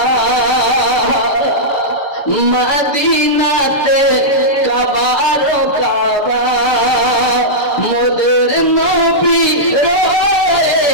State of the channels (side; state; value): right; late; 7.0 ms